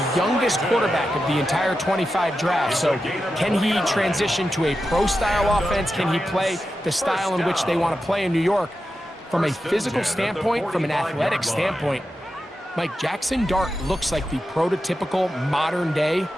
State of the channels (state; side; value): normal; both; correlation 0.90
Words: youngest quarterback of the entire 25 draft. So can he transition to a pro-style offense? Can he play the style in which they want to play in New York? From a physical standpoint, from an athletic standpoint, Mike, Jackson Dart looks like the prototypical modern-day